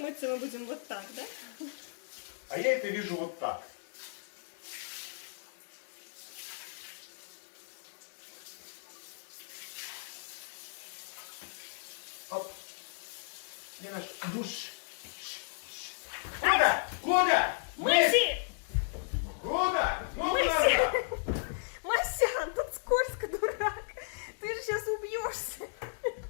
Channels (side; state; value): right; silent; digital silence